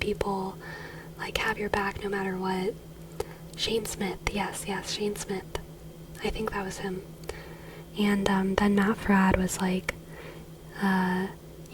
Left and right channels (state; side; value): identical; both; correlation 1.00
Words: like have your back no matter what. Shane Smith, yes, Shane Smith. I think that was him. And then Matt Fradd was like,